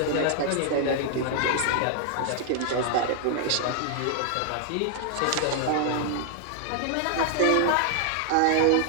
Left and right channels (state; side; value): different; both; correlation -0.01